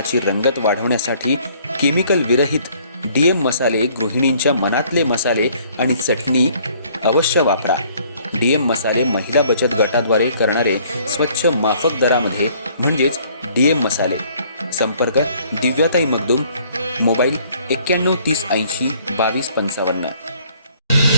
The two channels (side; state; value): both; inverted; correlation -0.60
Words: रंगत वाढवण्यासाठी केमिकल विरहित डीएम मसाले, गृहिणींच्या मनातले मसाले आणि चटणी अवश्य वापरा. डीएम मसाले महिला बचत गटाद्वारे करणारे स्वच्छ माफक दरामध्ये म्हणजेच डीएम मसाले. संपर्क दिव्याताई मगदूम, मोबाईल 91 30 80 22 55.